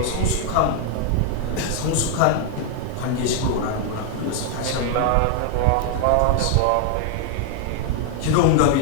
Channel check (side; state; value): both; different; correlation 0.00